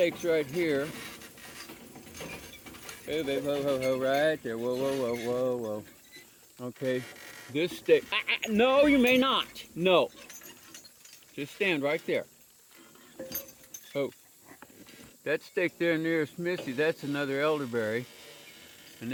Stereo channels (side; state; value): both; identical; correlation 1.00